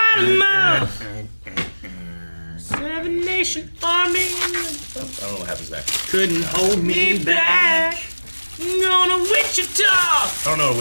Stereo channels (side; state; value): both; inverted; correlation -1.00